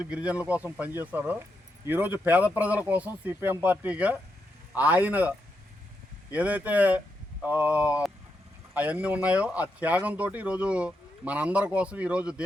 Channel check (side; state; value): both; normal; correlation 0.83